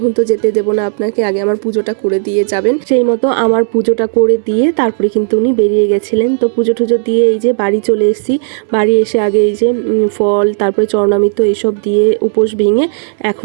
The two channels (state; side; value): silent; left; 67 dB below the other